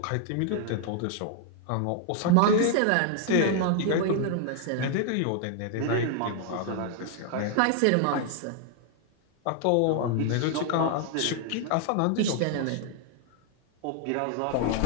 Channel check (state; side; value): different; both; correlation 0.00